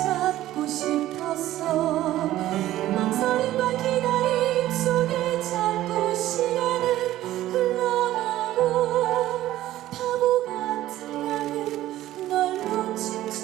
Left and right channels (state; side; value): quieter; left; 14.4 dB